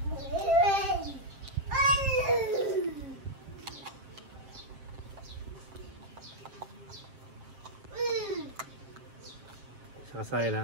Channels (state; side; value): late; left; 7.6 ms